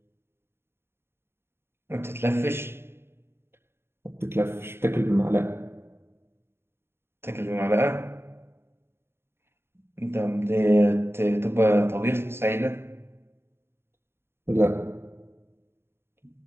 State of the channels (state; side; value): late; left; 0.11 ms